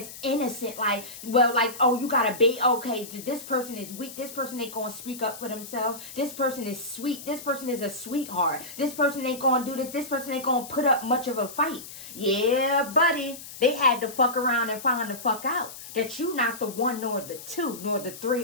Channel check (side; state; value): left; noise; hiss, 13 dB below the sound